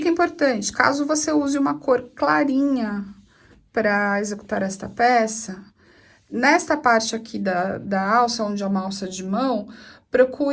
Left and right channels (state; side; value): identical; both; correlation 1.00